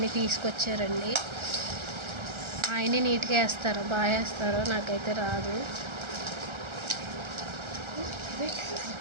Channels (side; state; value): left; late; 1.3 ms